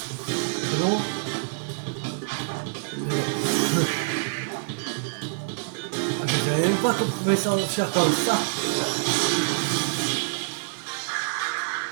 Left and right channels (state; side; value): silent; left; digital silence